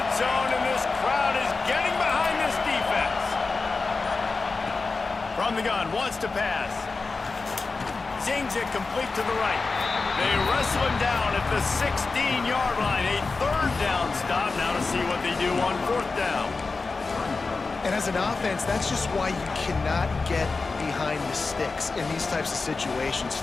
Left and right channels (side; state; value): right; quieter; 4.0 dB